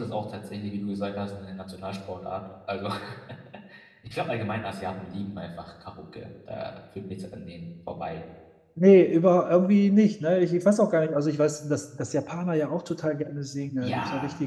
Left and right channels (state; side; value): identical; both; correlation 1.00